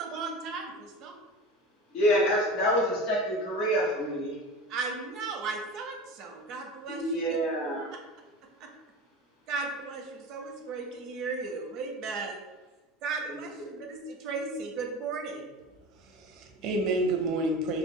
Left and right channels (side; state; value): both; normal; correlation 0.32